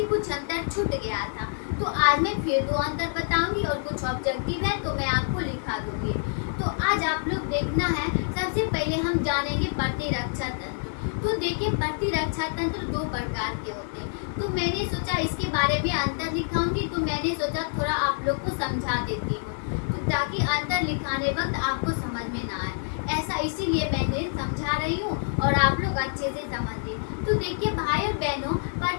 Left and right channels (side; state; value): right; silent; digital silence